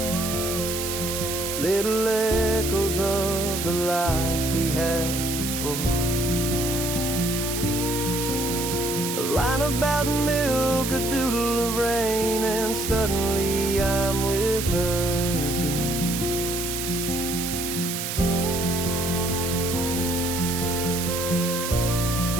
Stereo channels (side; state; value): right; noise; hiss, 4 dB below the sound